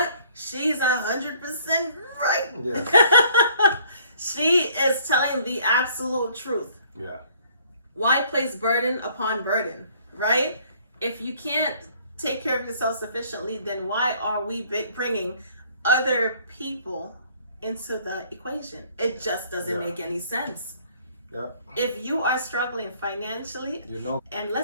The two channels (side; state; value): both; inverted; correlation -0.58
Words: she's 100% right. Yeah. She is telling the absolute truth. Yeah. Why place burden upon burden, right? If you can't take care of yourself sufficiently, then why are we bringing other people into the equation? It just doesn't make any sense. Yeah. If you are struggling financially, and